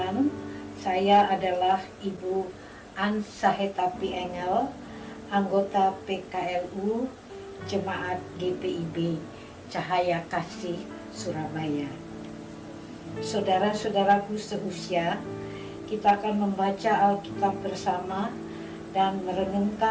saya adalah Ibu An Sahetapi Engel, anggota PKLU Jemaat GPIB Cahaya Kasih Surabaya. Saudara-saudaraku seusia, kita akan membaca Alkitab bersama dan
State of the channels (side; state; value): both; identical; correlation 1.00